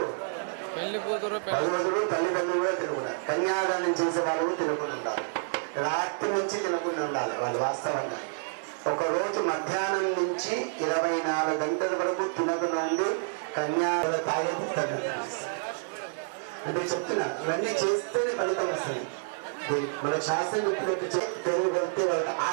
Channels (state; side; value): silent; left; 57 dB below the other